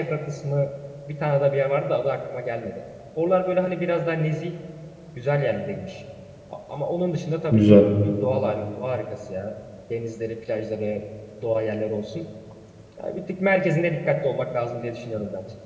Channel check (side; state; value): both; identical; correlation 1.00